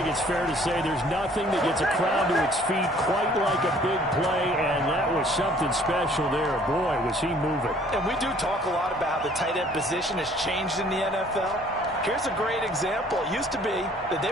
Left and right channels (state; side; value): normal; both; correlation 0.57